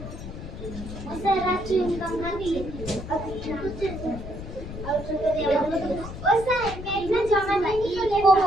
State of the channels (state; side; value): noise; left; rumble, 10 dB below the sound